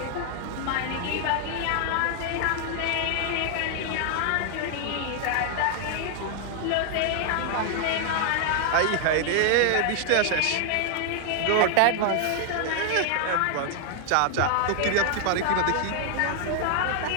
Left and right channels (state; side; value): different; both; correlation 0.00